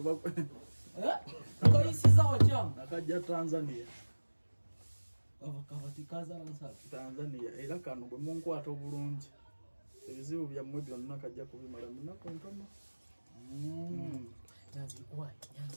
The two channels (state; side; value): inverted; both; correlation -1.00